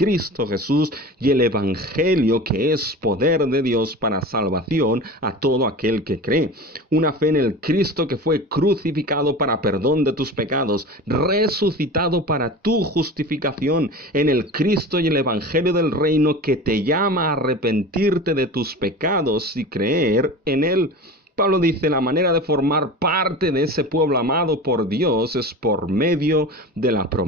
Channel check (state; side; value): normal; both; correlation 0.33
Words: Jesús y el Evangelio, que es poder de Dios para salvación a todo aquel que cree. Una fe en el Cristo que fue crucificado para perdón de tus pecados, resucitado para tu justificación, en el Cristo y el Evangelio del reino que te llama a arrepentirte de tus pecados y creer en él. Pablo dice, la manera de formar parte de ese pueblo amado por Dios es por medio de la